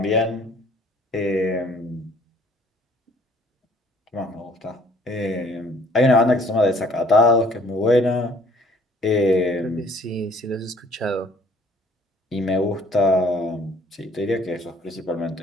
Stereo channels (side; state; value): both; normal; correlation 0.57